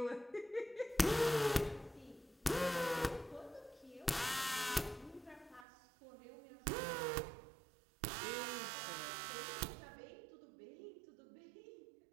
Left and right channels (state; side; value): drops out; left; at 5.7 s